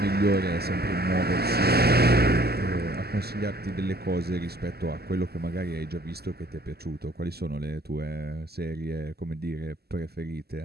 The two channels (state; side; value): late; left; 0.46 ms